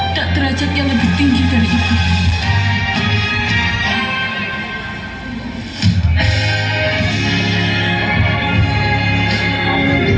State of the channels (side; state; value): both; identical; correlation 1.00